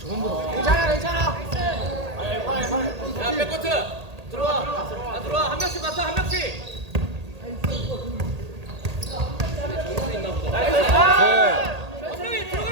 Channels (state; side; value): late; left; 1.8 ms